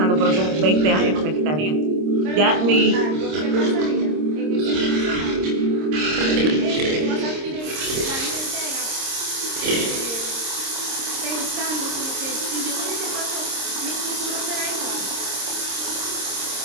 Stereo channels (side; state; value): left; late; 26 ms